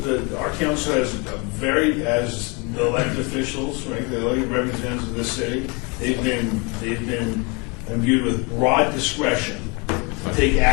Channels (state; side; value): quieter; right; 30.6 dB